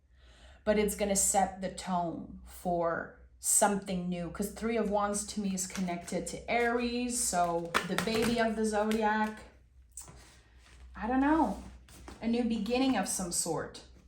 but it's going to set the tone for something new, because Three of Wands to me is connected to Aries, so the baby of the zodiac. I don't know, a new beginning of some sort.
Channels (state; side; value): identical; both; correlation 1.00